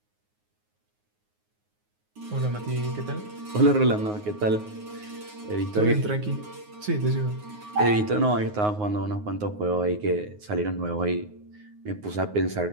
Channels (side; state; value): left; late; 9.5 ms